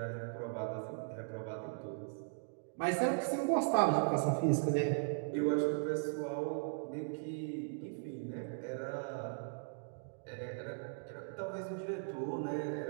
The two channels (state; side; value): silent; left; digital silence